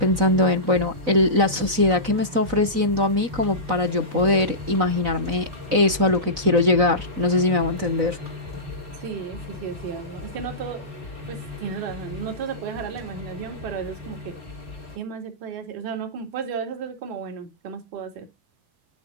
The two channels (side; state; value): left; late; 4.0 ms